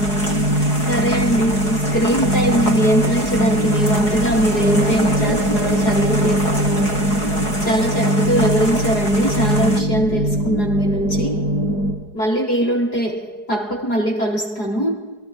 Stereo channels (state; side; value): late; right; 4.8 ms